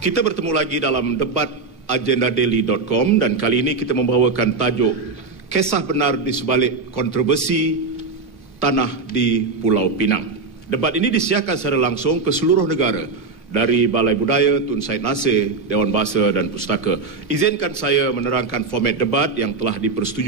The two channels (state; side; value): quieter; left; 4.2 dB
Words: Kita bertemu lagi dalam debat agendadaily.com dan kali ini kita membawakan tajuk Kisah Benar di Sebalik Kontroversi Tanah di Pulau Pinang. Debat ini disiarkan secara langsung ke seluruh negara dari Balai Budaya Tun Said Nasir, Dewan Bahasa dan Pustaka. Izinkan saya menerangkan format debat yang telah